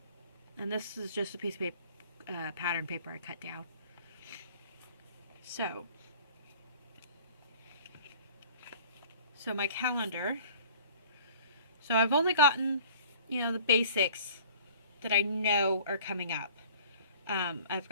this is just a piece of paper, pattern paper I cut down. So my calendar. So I've only gotten, you know, the basics that I know are coming up. I've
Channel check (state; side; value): inverted; both; correlation -0.49